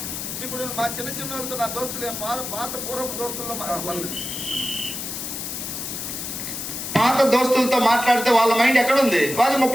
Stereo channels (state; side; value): noise; left; hiss, 6 dB below the sound